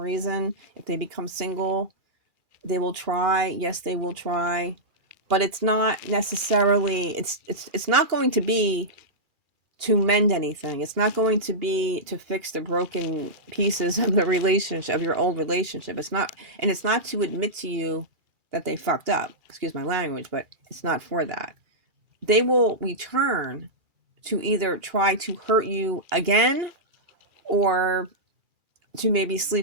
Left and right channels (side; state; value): left; late; 2.8 ms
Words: if they become single, they will try. Yes, they will try, but it's not necessarily it's not going to be to mend anything. It's not going to be to fix the broken pieces of the relationship, of your old relationship. It's not, and it's not to admit to you that they fucked up. Excuse my language, but it's not for that. They will return to either try to hurt you again or to maybe